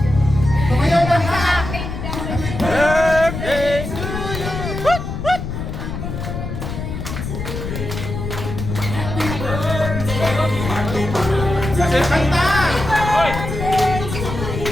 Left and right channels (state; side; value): noise; left; rumble, 5 dB below the sound